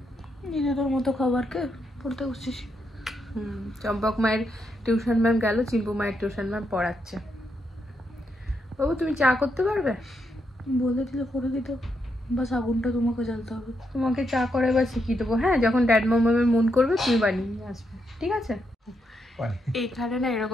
নিজেদের মতো খাবারকে পড়তে বসছিস। চম্পক মায়ের টিউশন ম্যাম গেল, চিম্পু মায়ের টিউশন ম্যাম পড়াচ্ছে। বাবু তুমি চা করতে পারবে? বলে দিলে করে দিত, বাস আগুনটা তোমাকে জ্বালতে হবে। তোমাকে চা করে এবার শিখিয়ে দেবো। হ্যাঁ, যখন ড্যাড মামের মন করবে তুমি বানিয়ে নিয়ে আসবে, ঠিক আছে? এইখানে না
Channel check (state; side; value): normal; both; correlation 0.81